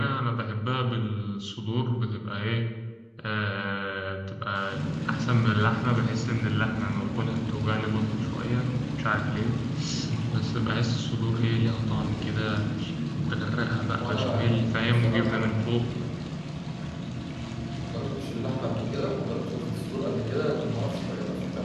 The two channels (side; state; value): both; identical; correlation 1.00